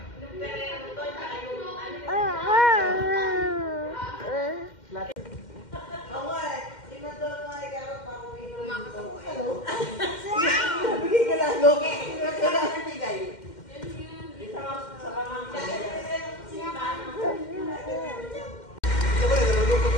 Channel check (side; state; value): right; late; 2.1 ms